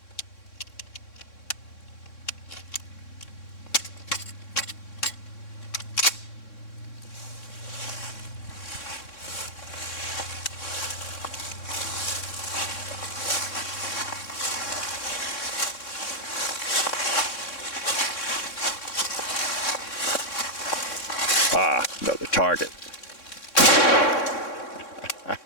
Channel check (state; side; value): late; right; 3.6 ms